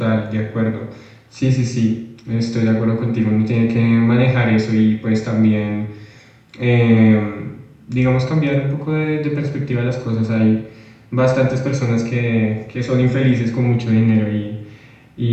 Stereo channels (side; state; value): both; identical; correlation 1.00